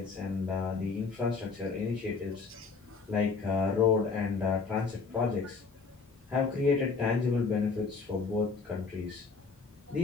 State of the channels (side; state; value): right; quieter; 4.7 dB